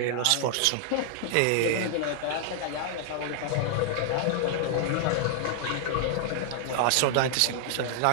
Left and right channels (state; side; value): different; both; correlation -0.01